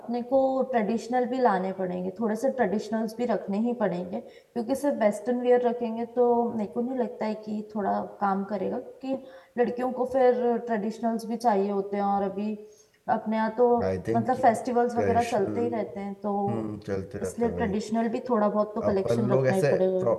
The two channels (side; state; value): both; identical; correlation 1.00